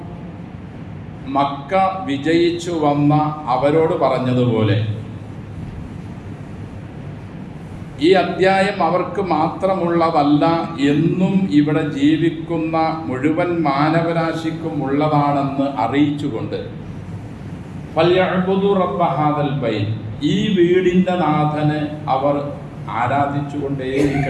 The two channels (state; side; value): identical; both; correlation 1.00